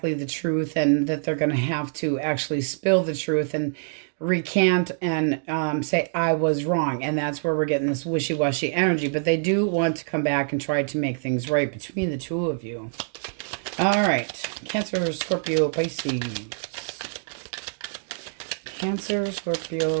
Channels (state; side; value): silent; left; digital silence